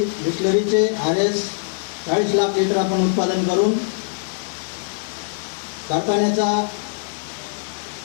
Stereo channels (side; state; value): right; silent; 64 dB below the other